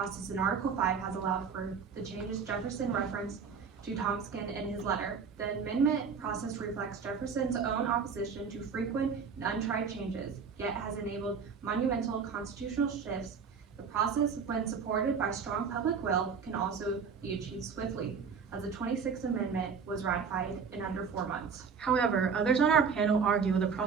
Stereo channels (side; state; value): left; quieter; 6.0 dB